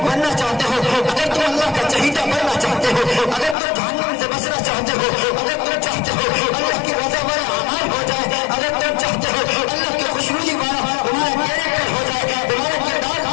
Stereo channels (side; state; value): right; drops out; at 3.6 s